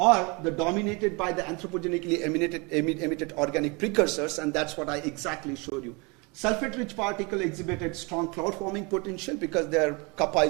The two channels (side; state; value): left; quieter; 29.2 dB